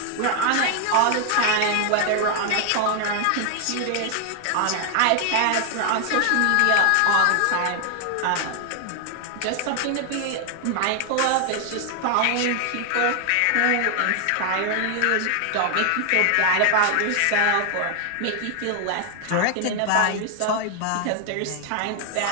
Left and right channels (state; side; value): different; both; correlation 0.00